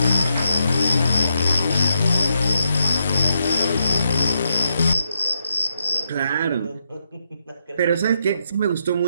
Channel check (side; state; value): both; inverted; correlation -0.82